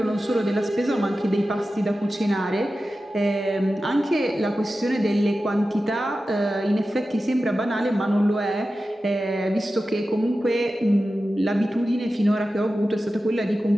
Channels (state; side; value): normal; both; correlation 0.93